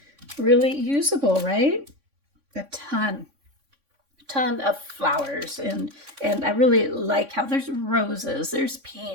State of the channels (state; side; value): late; left; 3.5 ms